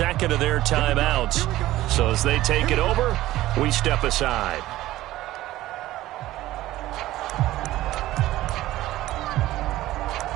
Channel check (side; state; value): left; quieter; 15.8 dB